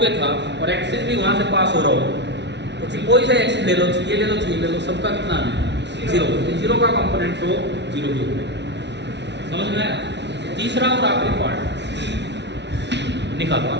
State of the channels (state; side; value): late; left; 0.51 ms